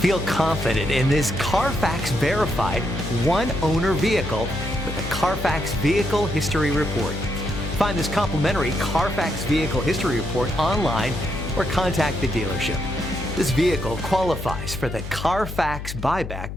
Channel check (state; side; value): noise; left; hum, 8 dB below the sound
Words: Feel confident in this Carfax verified one-owner vehicle with a Carfax Vehicle History Report. Find this complimentary Carfax Vehicle History Report online or contact the dealership. This vehicle qualifies for the Carfax Buyback